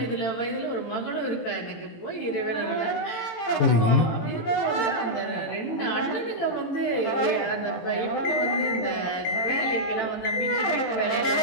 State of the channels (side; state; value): right; late; 18 ms